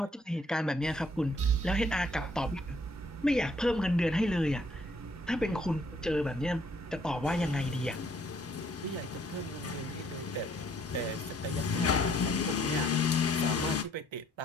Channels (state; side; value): normal; both; correlation 0.65